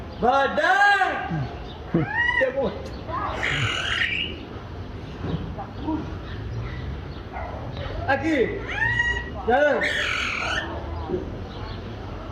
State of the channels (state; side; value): identical; both; correlation 1.00